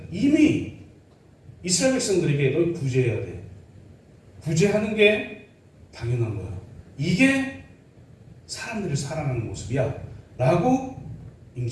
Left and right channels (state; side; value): identical; both; correlation 1.00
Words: 이미 이스라엘 백성들에게 너 구제해야 돼. 구제하는 게 당연한 거야. 이게 사람들을 사랑하는 모습이야. 라고 이미